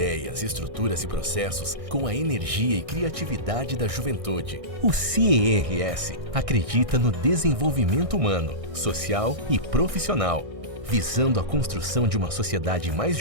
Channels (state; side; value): late; left; 1.6 ms